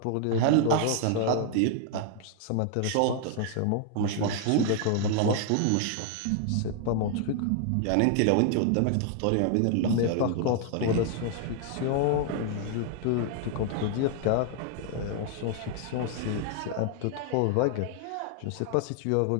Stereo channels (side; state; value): both; different; correlation 0.00